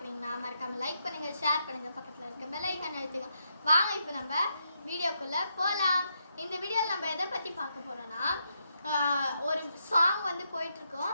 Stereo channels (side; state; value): both; inverted; correlation -0.80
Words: மறக்காமல் லைக் பண்ணுங்கள், ஷேர் பண்ணுங்கள், பக்கத்தில் இருக்க பெல் ஐக்கான் அழுத்துங்க. வாங்க இப்போ நம்ம வீடியோக்குள்ளே போகலாம். இந்த வீடியோவில் நம்ம எதை பற்றி பார்க்க போகிறோன்னா, ஒரு சாங் வந்து